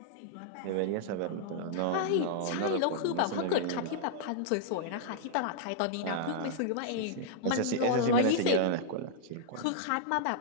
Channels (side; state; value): both; different; correlation -0.01